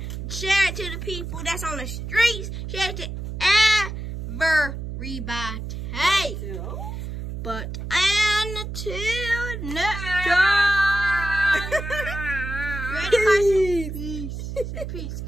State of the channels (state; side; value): noise; right; hum, 6 dB below the sound